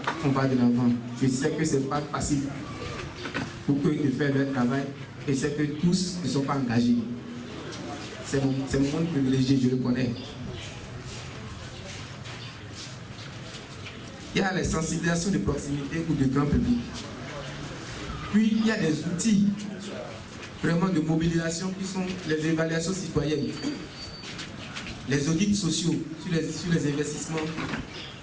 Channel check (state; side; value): identical; both; correlation 1.00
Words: on va de l'avant. Je sais que ce n'est pas facile pour eux de faire leur travail, et c'est que tous ne sont pas engagés. C'est mon monde privilégié, je le connais. Il y a les sensibilisations de proximité ou de grand public. Puis il y a des outils vraiment de mobilisation qui sont les évaluations citoyennes, les audits sociaux sur les investissements,